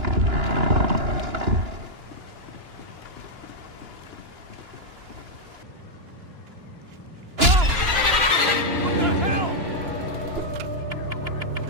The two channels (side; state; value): left; late; 2.9 ms